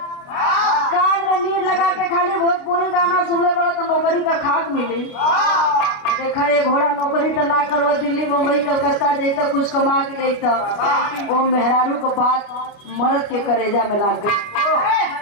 कान में लीड लगा के खाली भोजपुरी गाना सुनले वाला तो नौकरी का खाक मिली। देखा ये घोड़ा नौकरी तो ना करो, दिल्ली मुंबई कलकत्ता जैसे कुछ कमा के लेता वो मेहरारू को बात मर्द के करेजा में लाग गई।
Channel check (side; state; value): right; late; 29 ms